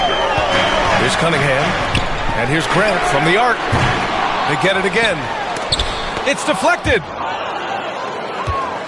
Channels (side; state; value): both; identical; correlation 1.00